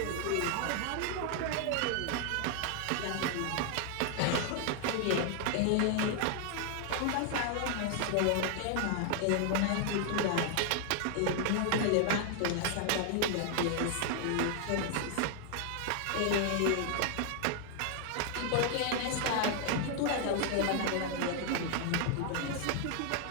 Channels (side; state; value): both; different; correlation 0.00